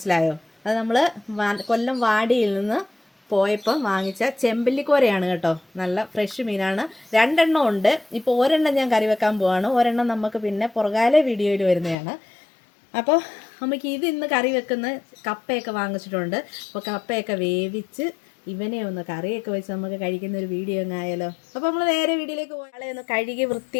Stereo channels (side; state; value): right; drops out; at 12.0 s